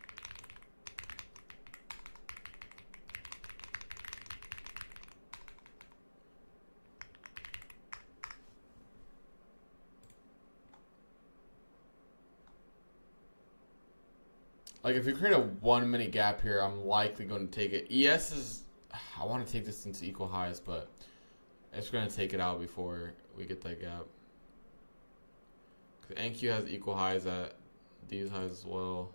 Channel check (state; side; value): inverted; both; correlation -1.00